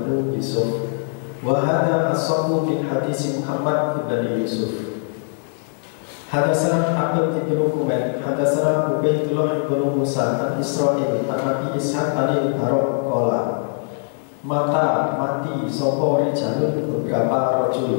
Yusuf. Wahada as-samu bin hadis Muhammad ibnu Yusuf. Hadatsana Abdul ibnu Humaid, hadatsana Ubaidullah ibnu Musa an Israil an Abi Ishaq al-Barok qala, mati sopo rijalun beberapa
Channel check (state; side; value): silent; right; 60 dB below the other